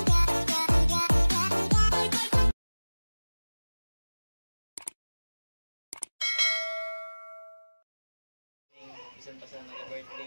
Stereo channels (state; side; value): inverted; both; correlation -1.00